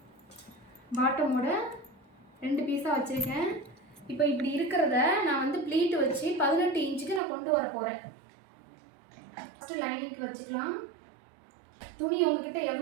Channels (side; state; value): left; drops out; at 7.2 s